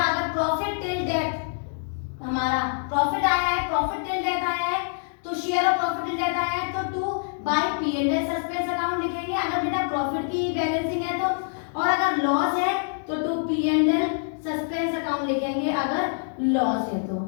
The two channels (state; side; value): silent; right; digital silence